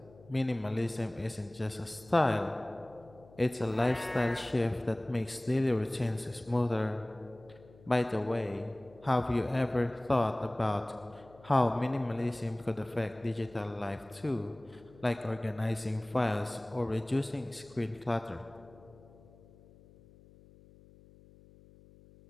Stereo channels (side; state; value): left; noise; hum, 24 dB below the sound